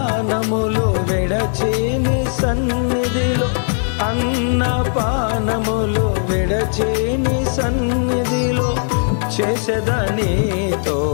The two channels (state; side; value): silent; right; digital silence